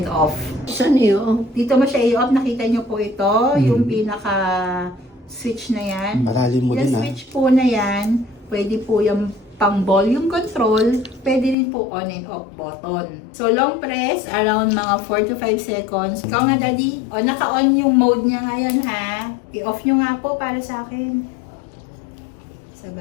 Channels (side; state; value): right; drops out; at 11.6 s